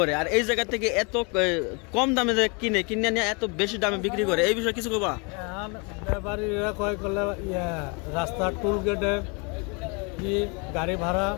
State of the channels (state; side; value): quieter; right; 32.6 dB